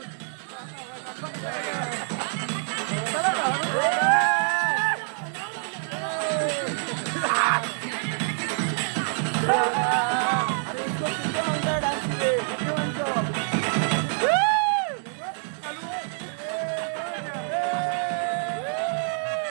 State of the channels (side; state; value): left; silent; 60 dB below the other